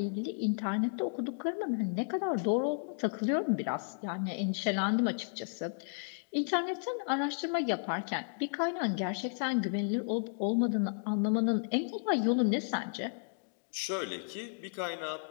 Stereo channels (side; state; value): right; silent; digital silence